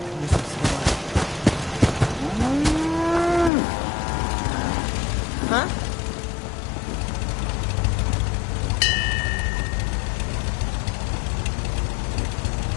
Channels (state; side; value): drops out; right; at 3.5 s